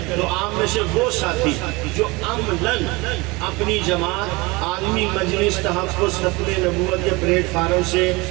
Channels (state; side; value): quieter; left; 24.4 dB